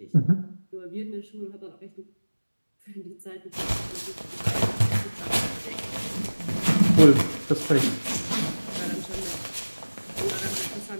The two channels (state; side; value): inverted; both; correlation -1.00